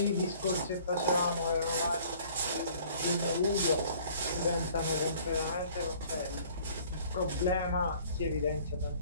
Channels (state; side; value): inverted; both; correlation -0.54